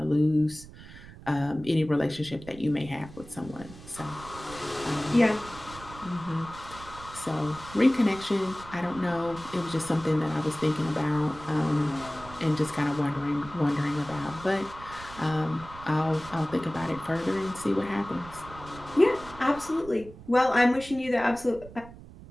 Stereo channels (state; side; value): noise; right; rumble, 17 dB below the sound